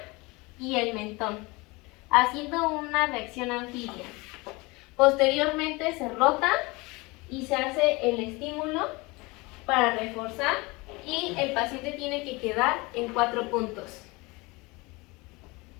y el mentón, haciendo una reacción anfibia. Posteriormente se rota y se hace el estímulo para reforzar y el paciente tiene que quedar en 4 puntos.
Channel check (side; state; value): right; quieter; 24.5 dB